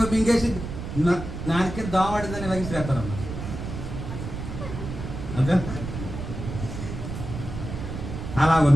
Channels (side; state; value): right; noise; rumble, 7 dB below the sound